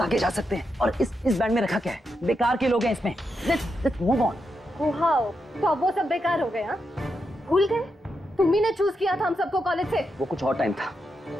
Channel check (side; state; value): both; normal; correlation 0.85